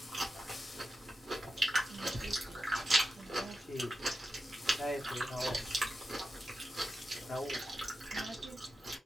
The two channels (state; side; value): normal; both; correlation 0.89